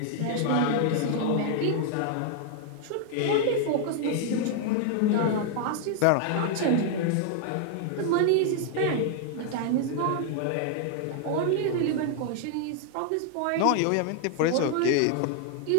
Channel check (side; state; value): both; different; correlation 0.00